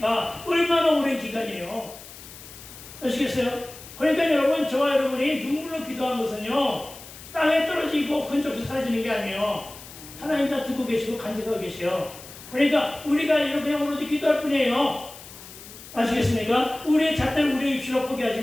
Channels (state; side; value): noise; left; hiss, 16 dB below the sound